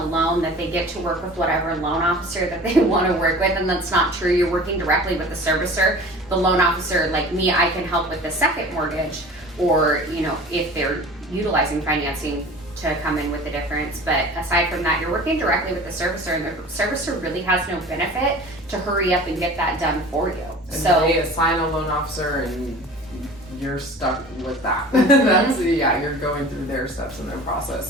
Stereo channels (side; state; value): both; normal; correlation 0.41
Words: loan that they get to work with whatever loan officer that they want to work with, and that's not true. You're working directly with the servicer. The loan officer, like me, I can help with the second mortgage, or you know, if they're utilizing financing to come in with the difference. But aside from that, you're working directly with the servicer, and the servicer really has no benefit to hurry up and get that done for you. And so they assign a loan officer and you're stuck with that. That's you're going through their steps in their process.